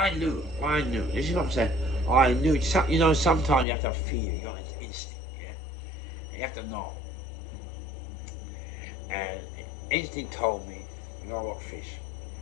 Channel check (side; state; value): right; drops out; at 3.7 s